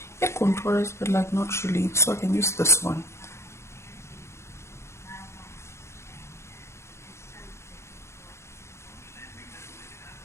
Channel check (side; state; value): right; late; 0.13 ms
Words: It contours, but like not really. So I can use this one.